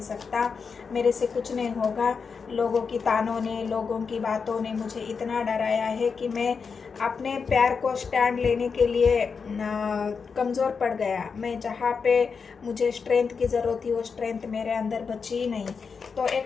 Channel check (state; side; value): quieter; right; 5.5 dB